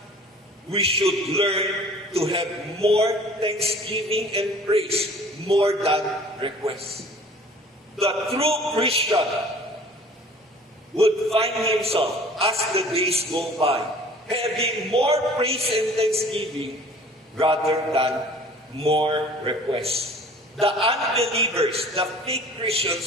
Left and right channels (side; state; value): both; normal; correlation 0.48